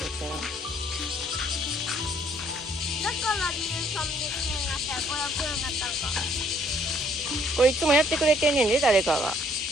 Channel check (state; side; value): normal; both; correlation 0.64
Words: たよ。だから理由300円になったら500円になったんか。これいつもやってくれてんねんで、誰かが。な。